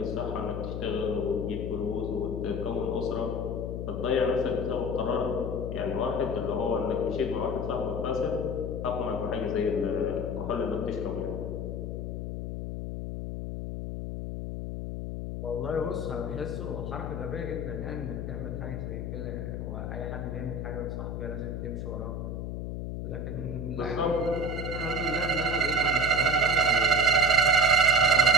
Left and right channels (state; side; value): noise; left; hum, 4 dB below the sound